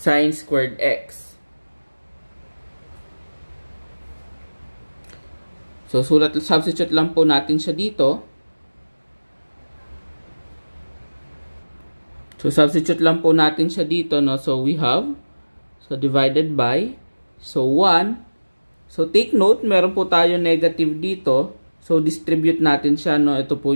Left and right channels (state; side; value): inverted; both; correlation -1.00